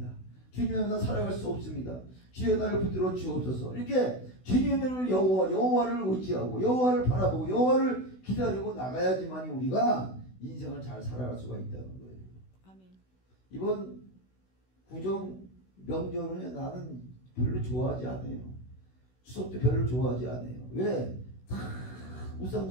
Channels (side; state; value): right; late; 16 ms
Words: 주님만 나 살아갈 수 없습니다. 주여 나를 붙들어 주옵소서. 이렇게 주님을 여호와를 의지하고 여호와를 바라보고 여호와를 기다리고 나가야지만 우리가 인생을 잘 살아갈 수가 있다는 거예요. 아멘. 이번 구정 명절은 나는 별로 좋아하지 않아요. 추석도 별로 좋아하지 않아요. 왜? 다 우상